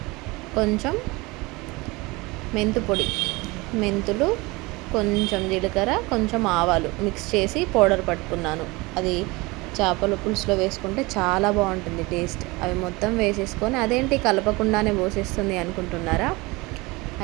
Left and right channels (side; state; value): left; quieter; 23.5 dB